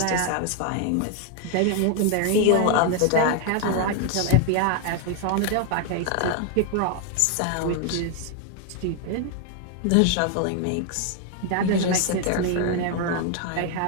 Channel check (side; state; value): both; different; correlation 0.00